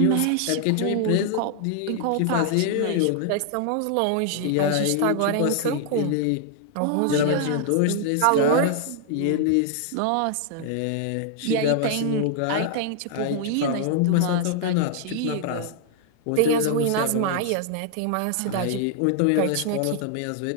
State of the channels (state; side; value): different; both; correlation 0.00